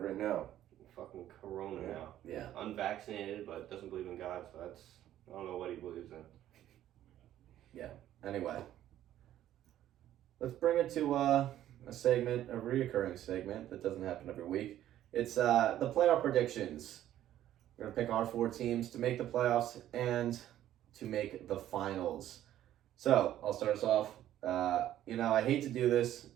now. Fucking Corona now. Yeah. Unvaccinated, but doesn't believe in God, so I don't know what he believes in. Yeah. Anyway, let's bring it to a reoccurring segment that doesn't happen every week. It's the playoff predictions. We're gonna pick our 4 teams to make the playoffs and to make the finals. So I'll start us off. I hate to do this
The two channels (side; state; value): left; quieter; 12.4 dB